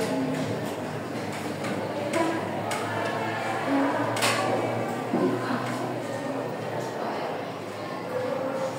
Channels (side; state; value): both; identical; correlation 1.00